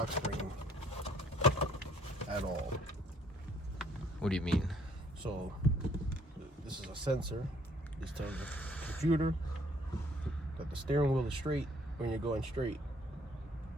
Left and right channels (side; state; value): both; normal; correlation 0.63